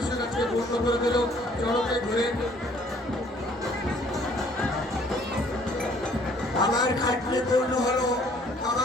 আজকে পূর্ণ করে দিল চড়কে ঘুরে। বাবার খাটনি পূর্ণ হলো,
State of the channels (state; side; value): normal; both; correlation 0.59